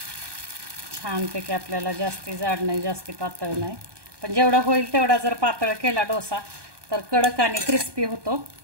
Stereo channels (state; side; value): late; left; 1.2 ms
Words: छानपैकी आपल्याला जास्ती जाड नाही, जास्ती पातळ नाही, पण जेवढा होईल तेवढा जर पातळ केला डोसा तर कडक आणि क्रिस्पी होतो।